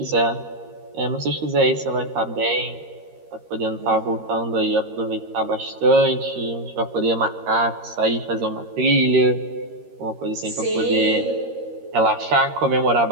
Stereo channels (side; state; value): left; late; 13 ms